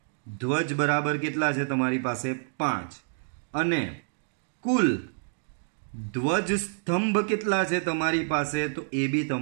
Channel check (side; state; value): left; silent; digital silence